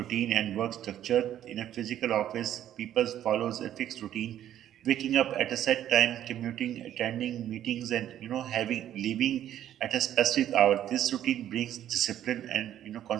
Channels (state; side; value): quieter; left; 11.4 dB